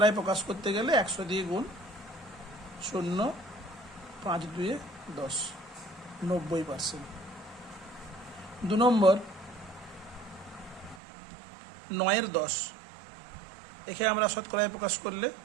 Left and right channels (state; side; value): drops out; left; at 11.0 s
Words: প্রকাশ করতে গেলে 100 দিয়ে গুণ, 0 5 2 10, 90%। 2 নম্বর 9-এর 10, একে আমরা শতকরায় প্রকাশ করলে